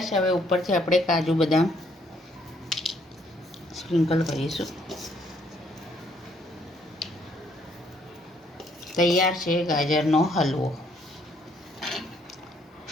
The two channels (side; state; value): both; normal; correlation 0.67